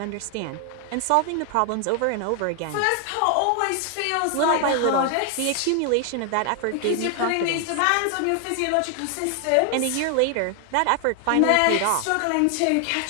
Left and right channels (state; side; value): different; both; correlation 0.00